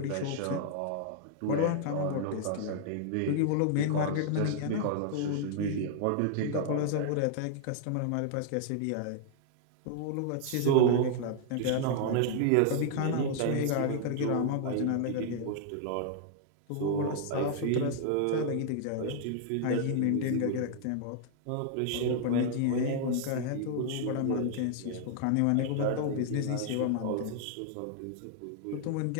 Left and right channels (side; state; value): both; different; correlation -0.01